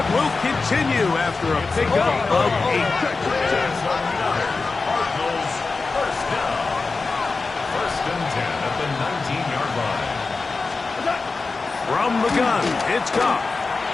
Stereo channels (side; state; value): right; quieter; 4.0 dB